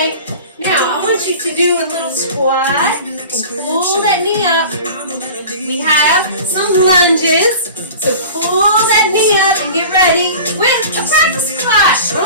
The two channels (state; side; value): inverted; both; correlation -0.38